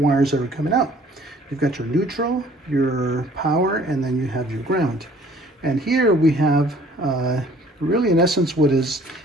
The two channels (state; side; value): normal; both; correlation 0.55